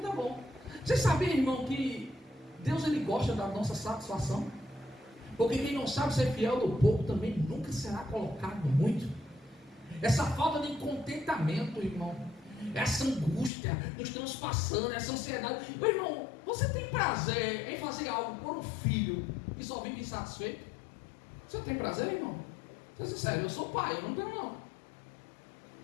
bom. Você sabia, irmão, que Deus, ele gosta da nossa satisfação? Porque quem não sabe ser fiel do pouco também nunca será colocado no muito. Essa falta de contentamento, irmão, essa angústia nos transpassando, essa ansiedade. Meu irmão, você tem prazer em fazer algo por um filho que só vive insatisfeito? Você tem prazer, irmão? Sou sincero, eu sou pai, eu não tenho não.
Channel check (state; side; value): drops out; right; at 13.5 s